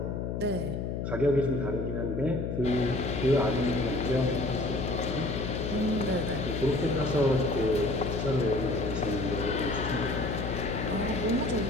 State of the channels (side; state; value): left; noise; hum, 3 dB below the sound